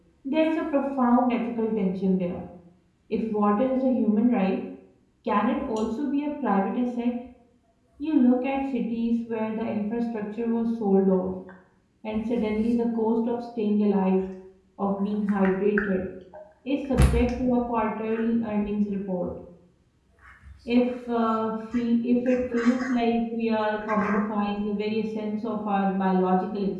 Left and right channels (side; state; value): both; identical; correlation 1.00